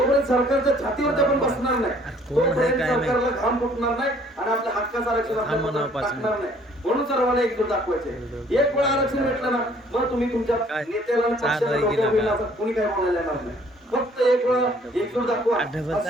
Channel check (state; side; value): normal; both; correlation 0.59